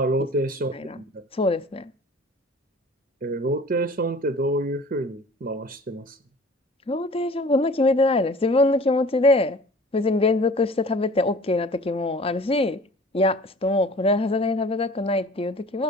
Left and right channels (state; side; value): normal; both; correlation 0.45